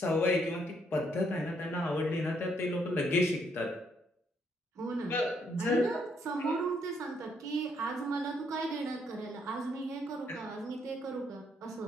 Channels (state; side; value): normal; both; correlation 0.72